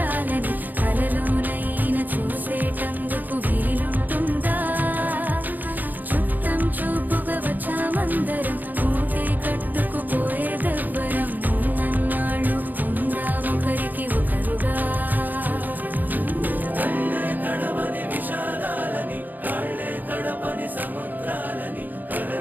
కలలోనైనా చూసేటందుకు వీలుంటుందా చుట్టం చూపుగా వచ్చామందరం మూటే కట్టుకుపోయేదెవ్వరం ఉన్నన్నాళ్ళు ఉందామొకరికి ఒకరుగా కళ్ళే తడవని విషాదాలని కాళ్ళే తడపని సముద్రాలని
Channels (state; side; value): late; left; 0.085 ms